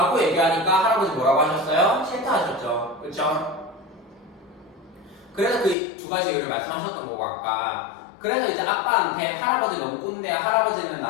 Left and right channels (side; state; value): right; drops out; at 5.8 s